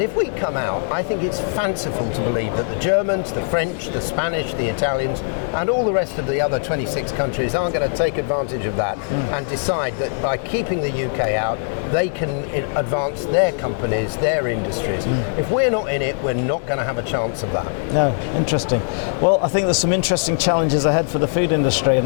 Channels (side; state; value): right; silent; 62 dB below the other